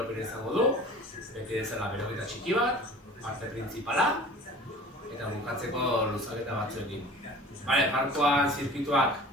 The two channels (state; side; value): normal; both; correlation 0.42